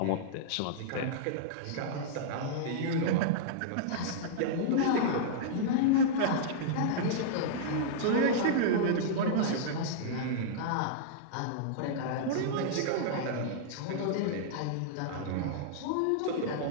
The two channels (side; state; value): both; different; correlation -0.02